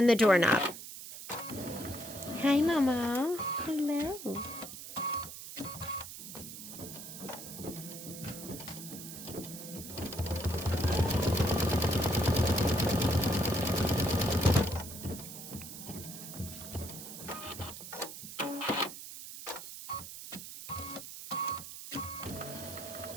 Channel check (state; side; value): noise; right; hiss, 11 dB below the sound